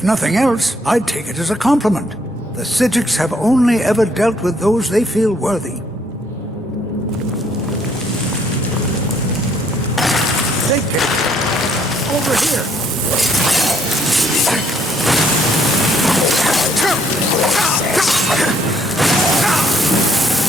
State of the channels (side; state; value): both; normal; correlation 0.67